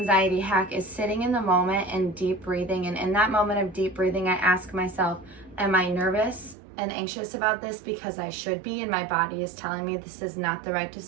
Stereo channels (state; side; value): drops out; left; at 6.6 s